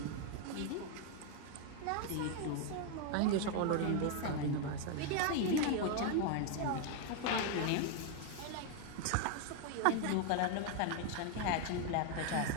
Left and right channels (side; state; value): both; different; correlation 0.01